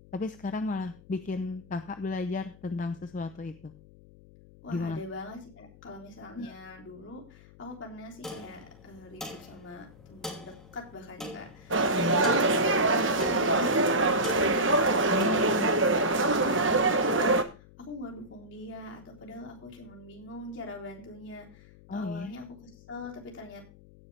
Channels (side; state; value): left; noise; hum, 22 dB below the sound